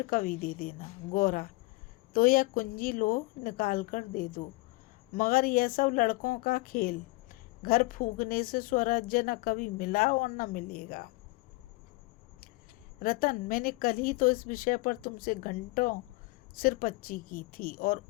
कभी दे देना। गौरा, तो यह कुंजी लो, निकाल कर दे दो। मगर यह सब लड़कों का खेल। घर फूकने से स्वराज्य न कभी मिला और न मिलेगा। रतन, मैंने कल ही तो इस विषय पर तुमसे घंटों सिरपच्ची की थी, और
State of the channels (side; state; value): right; quieter; 22.7 dB